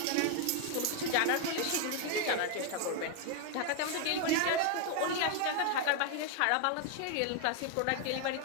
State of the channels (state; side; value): different; both; correlation 0.00